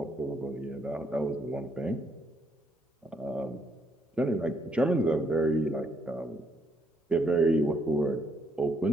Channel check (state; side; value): normal; both; correlation 0.72